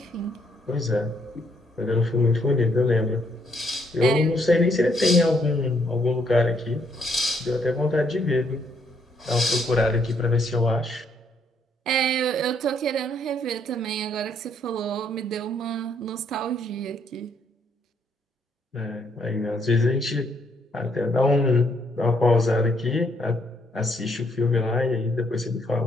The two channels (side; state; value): both; normal; correlation 0.71